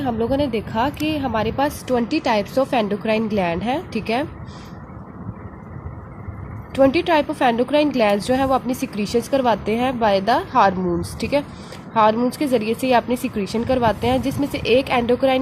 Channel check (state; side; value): identical; both; correlation 1.00